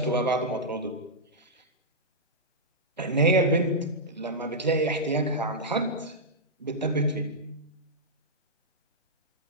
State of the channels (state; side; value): normal; both; correlation -0.09